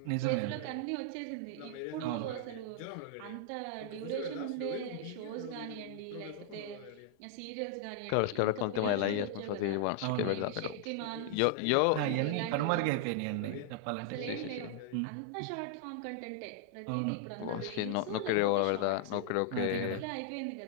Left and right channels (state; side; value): different; both; correlation -0.01